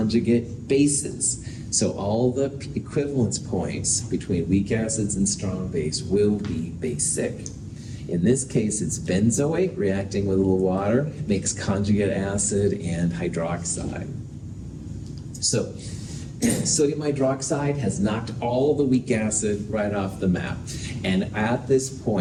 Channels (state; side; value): identical; both; correlation 1.00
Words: bases. So all the equivalence points between weak acids and strong base will be basic. In this case, it's benzoate reacting with a little water, makes conjugate acid and hydroxide. So sodium hydroxide has knocked all the weak acid right off the map. And at this